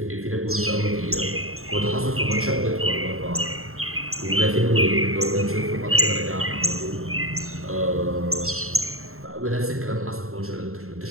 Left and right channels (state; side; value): late; left; 0.62 ms